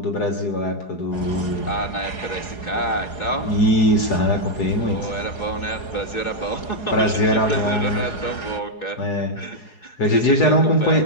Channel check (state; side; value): late; right; 4.8 ms